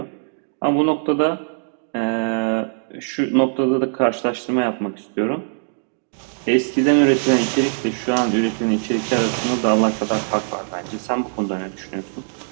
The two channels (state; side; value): silent; left; 62 dB below the other